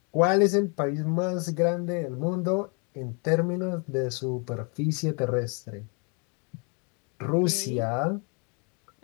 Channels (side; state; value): right; quieter; 35.4 dB